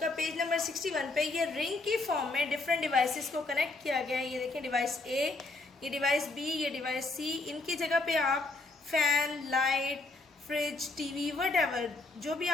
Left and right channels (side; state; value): right; quieter; 3.4 dB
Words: पेज नंबर 61 पे ये रिंग की फॉर्म में डिफरेंट डिवाइसेस को कनेक्ट किया गया है. ये देखिए डिवाइस ए, ये डिवाइस बी, ये डिवाइस सी. इनकी जगह पे आप fan, light, fridge, TV, whatever जो भी